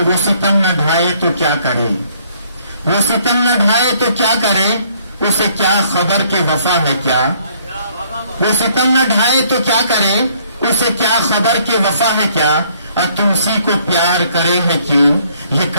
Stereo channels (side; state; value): both; inverted; correlation -0.64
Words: وہ ستم نہ ڈھائے تو کیا کرے، وہ ستم نہ ڈھائے تو کیا کرے، اسے کیا خبر کہ وفا ہے کیا، وہ ستم نہ ڈھائے تو کیا کرے، اسے کیا خبر کہ وفا ہے کیا، اور تم اسی کو پیار کرے ہے کیوں، یہ